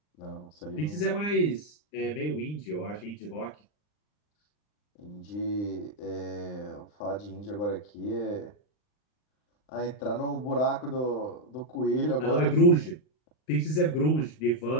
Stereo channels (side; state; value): right; late; 39 ms